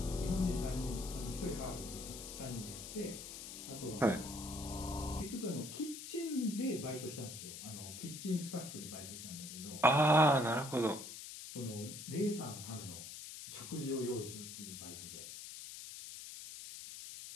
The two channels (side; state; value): left; noise; hiss, 10 dB below the sound